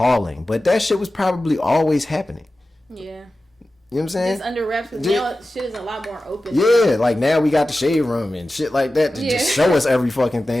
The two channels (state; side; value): normal; both; correlation 0.95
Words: But that shit was probably always happening. Yeah. You know what I'm saying? It's under wraps. Because now shit is a lot more open. Yeah, like now we got the shade room and shit like that to just show us every fucking